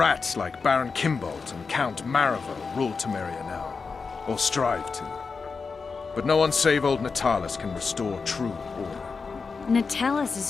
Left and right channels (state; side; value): quieter; right; 4.9 dB